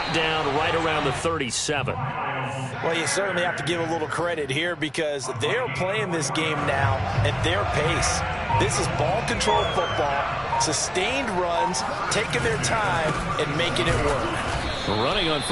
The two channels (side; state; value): both; identical; correlation 1.00